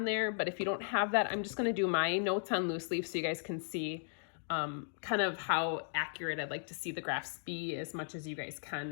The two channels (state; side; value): silent; right; digital silence